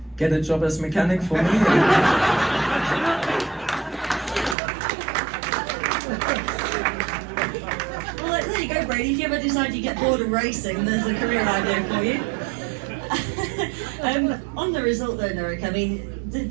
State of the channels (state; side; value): drops out; left; at 4.5 s